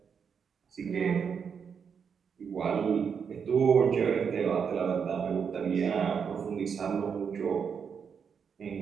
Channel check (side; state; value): left; quieter; 6.7 dB